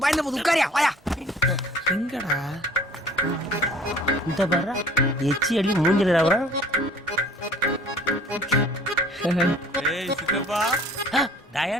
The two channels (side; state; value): both; normal; correlation 0.51